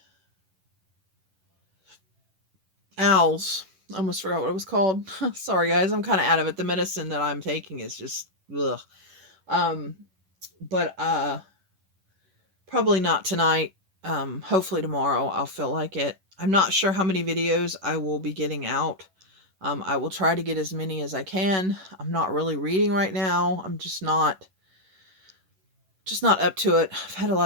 owls. I almost forgot what it was called. Sorry, guys. I'm kind of out of it. The medicine that I'm taking is just ugh. Um, but probably not tonight. Hopefully tomorrow I'll feel like it. I'm not sure how many videos I will be getting out. I will try to get as many as I can. I'm not really reading right now. I'm just not up to it. I've had a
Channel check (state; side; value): late; left; 11 ms